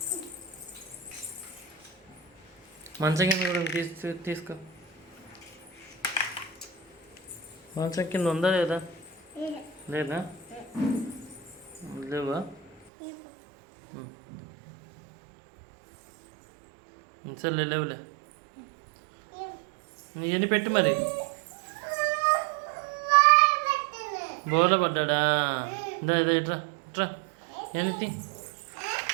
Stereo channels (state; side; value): drops out; left; at 12.8 s